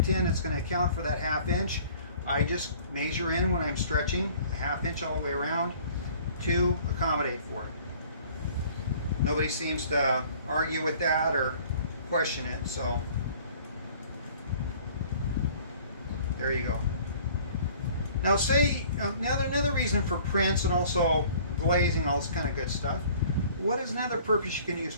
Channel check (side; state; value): both; inverted; correlation -0.52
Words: in, it's going to account for that 1/2 inch. I just measure in when I'm stretching, a 1/2 inch all the way around to accommodate for it. Nobody seems to argue with that or question it, so there you go. Now say, another reason for prints and also glazing, all this kind of good stuff, what is another purpose you can use